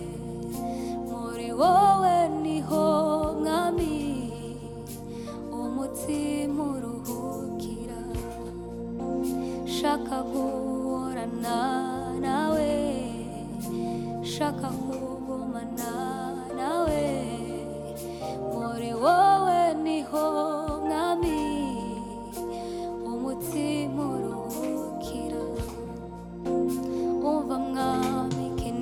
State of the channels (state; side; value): identical; both; correlation 1.00